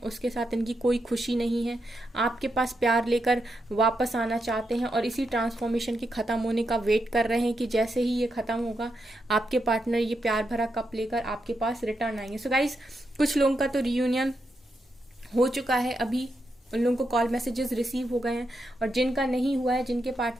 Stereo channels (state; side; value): normal; both; correlation 0.84